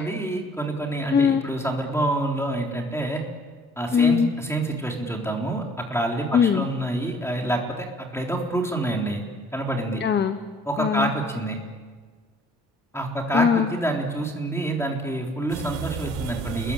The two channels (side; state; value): both; normal; correlation 0.57